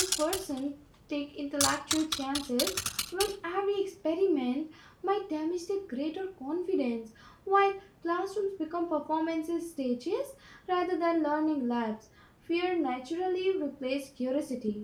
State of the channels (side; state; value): both; identical; correlation 1.00